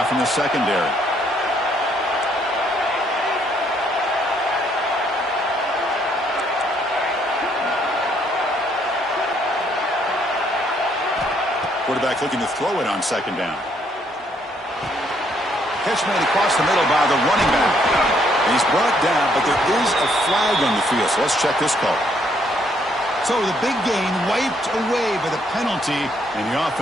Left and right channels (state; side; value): normal; both; correlation 0.69